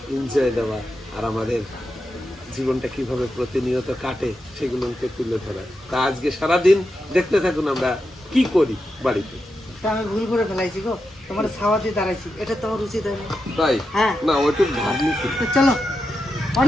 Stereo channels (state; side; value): normal; both; correlation 0.88